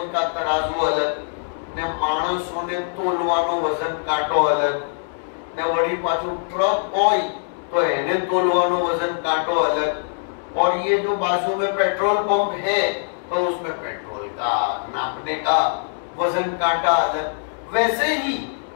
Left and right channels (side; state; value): right; silent; digital silence